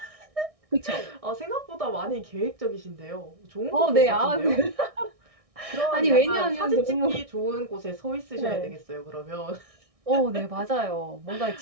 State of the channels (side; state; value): left; late; 1.6 ms